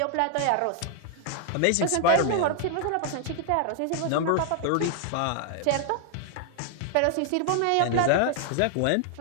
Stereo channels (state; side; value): different; both; correlation 0.00